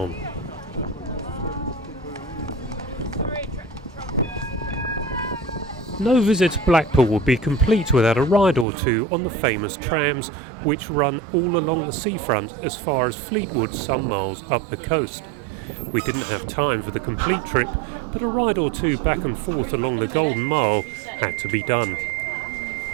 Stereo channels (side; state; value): left; drops out; at 8.7 s